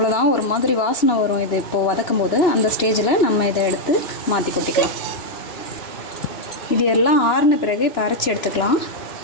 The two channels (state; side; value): late; right; 2.9 ms